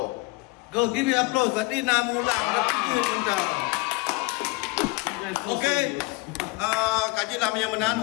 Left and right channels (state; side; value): quieter; right; 25.1 dB